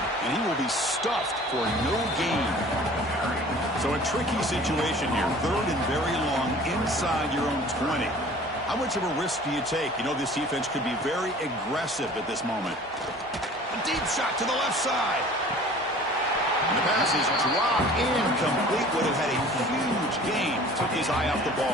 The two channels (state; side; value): normal; both; correlation 0.46